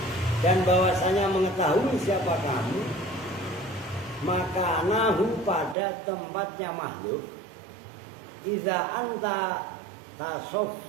dan bahwasanya mengetahui siapa kamu maka nahu pada tempatnya makhluk iza anta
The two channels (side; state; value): left; drops out; at 5.8 s